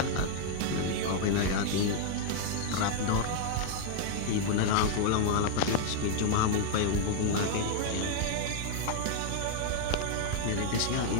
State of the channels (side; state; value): both; different; correlation 0.00